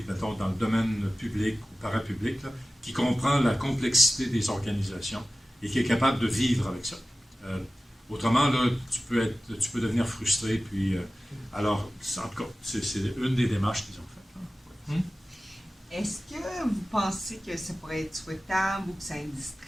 mettons, dans le domaine public ou parapublic, là, qui comprend la complexité des organisations et qui est capable de vivre avec ça. Autrement, là, tu peux devenir frustré. Puis, alors, en tout cas, c'est une des démarches qu'ils ont faites. Est-ce que vous pensez que ça pourrait être souhaitable ou que ça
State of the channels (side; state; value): both; normal; correlation 0.96